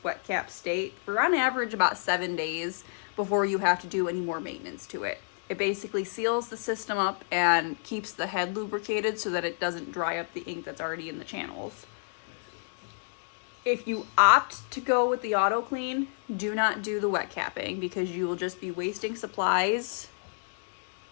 wet cap state for on average about 7 days before you have to do any more maintenance to it. It basically seals the system up and keeps the head lubricated so that it doesn't dry up the ink that's already in the channels. If you opt to go with the auto clean, do not do the wet capping because you will just be wasting supplies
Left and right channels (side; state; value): right; silent; digital silence